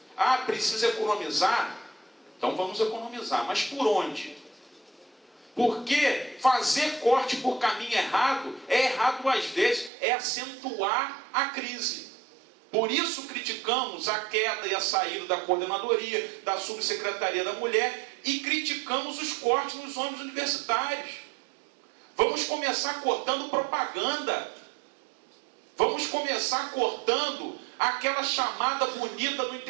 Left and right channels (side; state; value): left; drops out; at 9.9 s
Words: Ah, precisa economizar? Então vamos economizar, mas por onde? Porque fazer corte por caminho errado é errado às vezes, é acentuar a crise. Por isso criticamos a queda e a saída da coordenadoria, da subsecretaria da mulher, e criticamos os cortes nos ônibus universitários. Vamos começar cortando propaganda. Vamos começar cortando aquela chamada bonita no